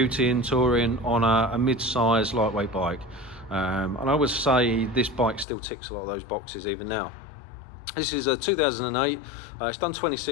touring on a mid-size lightweight bike. And I would say this bike still ticks a lot of those boxes even now. This is a 2008, it's done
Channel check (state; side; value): drops out; right; at 5.5 s